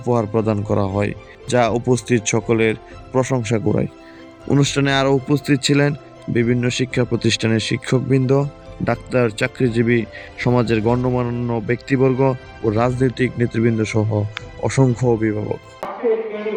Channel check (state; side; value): identical; both; correlation 1.00